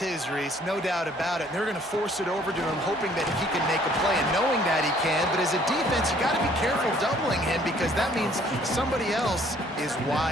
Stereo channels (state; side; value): normal; both; correlation 0.60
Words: his, Reese, no doubt about it. And they're going to force it over to him, hoping that he can make a play and knowing that he can. But as a defense, you got to be careful doubling him because that means somebody else is